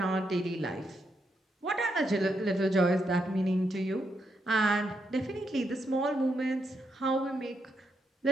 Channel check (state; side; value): normal; both; correlation 0.81